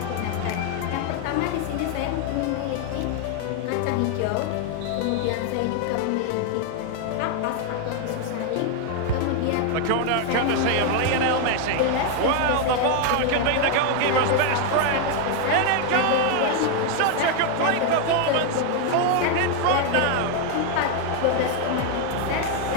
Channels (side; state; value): both; different; correlation 0.01